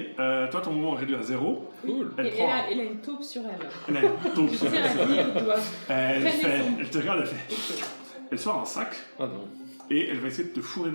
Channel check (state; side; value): inverted; both; correlation -1.00